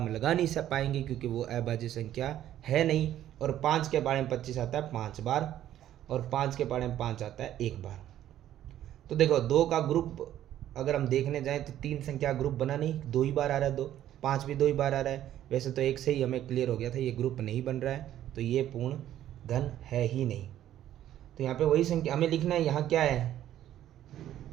लगा नहीं सब पाएंगे क्योंकि वो अभाज्य संख्या है नहीं। और 5 के पाड़े में 25 आता है 5 बार, और 5 के पाड़े में 5 आता है 1 बार। तो देखो 2 का ग्रुप अगर हम देखने जाएं तो 3 संख्या ग्रुप बना नहीं, 2 ही बार आ रहा है, 2 5 भी 2 ही बार आ रहा है। वैसे तो 1 से ही हमें क्लियर हो गया था ये ग्रुप नहीं बन रहा है, तो ये पूर्ण घन है ही नहीं। तो यहाँ पे वही संख्या हमें लिखना है। यहाँ क्या है,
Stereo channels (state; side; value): quieter; left; 12.0 dB